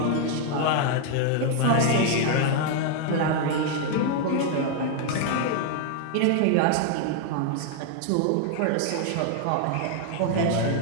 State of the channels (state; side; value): different; both; correlation 0.00